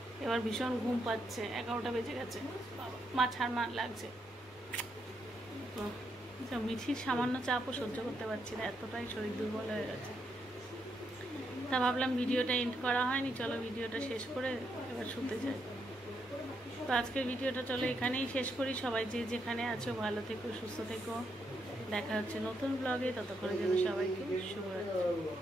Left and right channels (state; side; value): normal; both; correlation 0.79